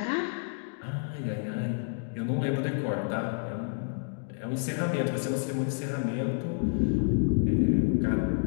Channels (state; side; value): silent; right; digital silence